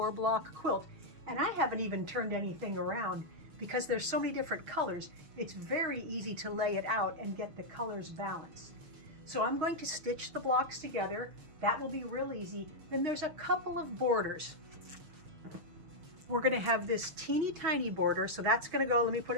block quilt. And I haven't even turned anything around because there's so many different colors. It's very easy to lay it out and get the colors balanced. So I'm going to stitch the blocks together. That will be real easy. Then there's a couple of borders. We're going to have this teeny tiny border. So that's going to go, let me put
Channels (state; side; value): late; left; 6.3 ms